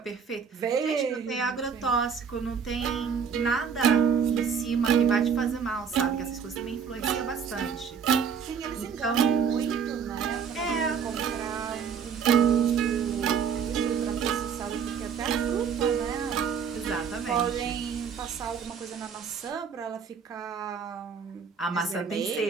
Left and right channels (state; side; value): quieter; left; 6.8 dB